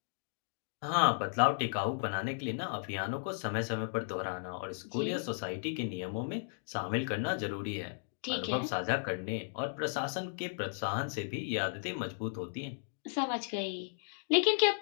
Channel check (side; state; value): right; silent; digital silence